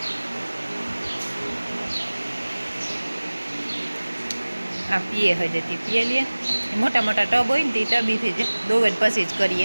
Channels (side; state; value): both; inverted; correlation -1.00